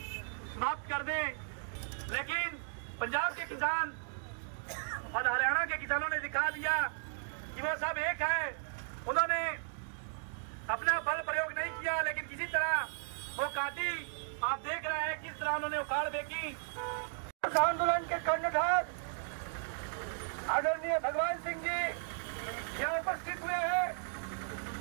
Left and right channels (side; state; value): left; silent; digital silence